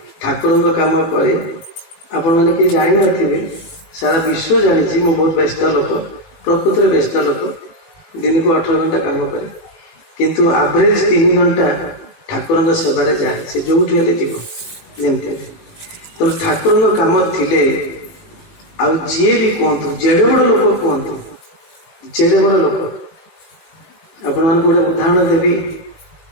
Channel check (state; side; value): late; right; 19 ms